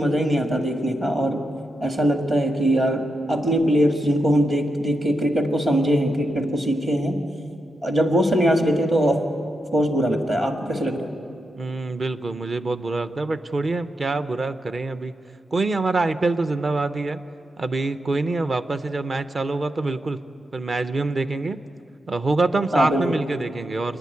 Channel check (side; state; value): both; normal; correlation 0.86